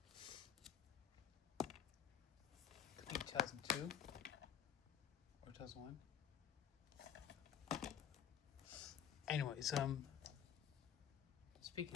could be 2002 or 2001. Anyways, speaking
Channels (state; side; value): quieter; right; 9.1 dB